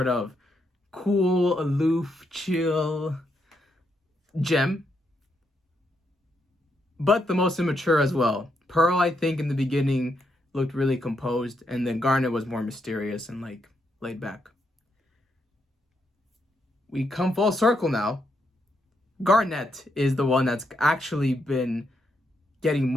of cool, aloof, chill gem, but the most immature as well. Pearl, I think in the beginning, looked really composed, and then Garnet was more mysterious and like laid back. We come full circle now. Garnet is the one that's actually been getting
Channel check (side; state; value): both; normal; correlation 0.79